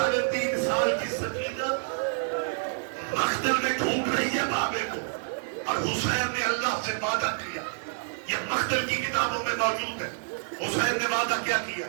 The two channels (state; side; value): silent; left; digital silence